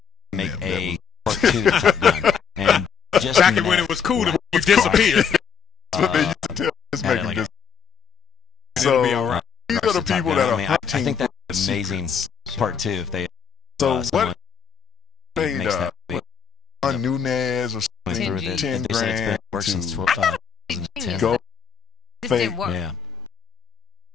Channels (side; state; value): right; quieter; 7.2 dB